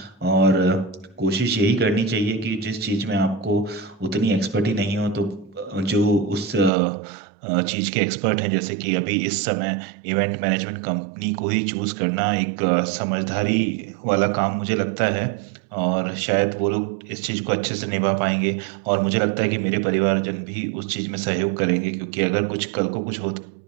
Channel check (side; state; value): left; drops out; at 6.7 s